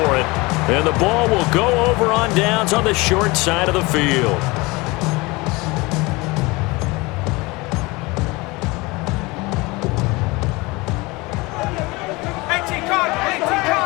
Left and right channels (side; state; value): right; quieter; 23.8 dB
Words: it. And the ball will go over on downs on the short side of the field.